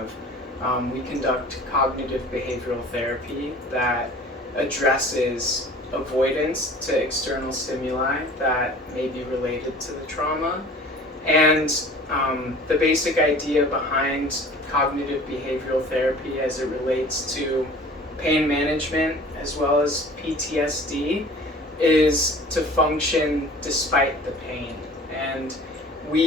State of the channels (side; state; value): both; normal; correlation 0.45